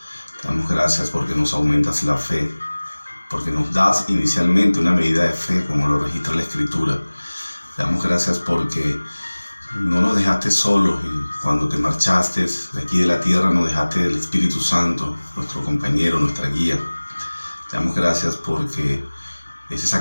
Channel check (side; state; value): both; inverted; correlation -1.00